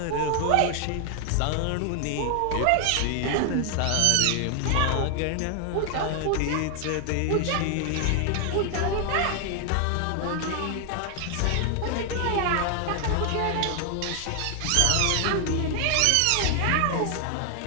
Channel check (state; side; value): different; both; correlation 0.00